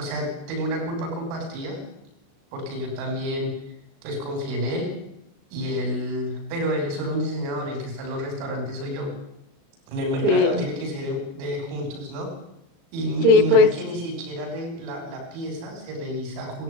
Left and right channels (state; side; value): late; left; 36 ms